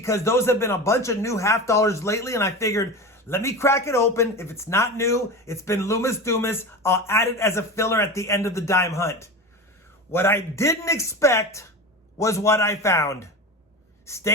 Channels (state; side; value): normal; both; correlation 0.28